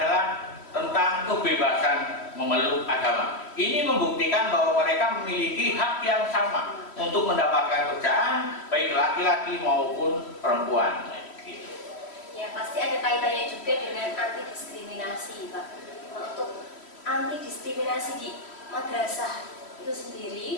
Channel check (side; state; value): right; late; 3.1 ms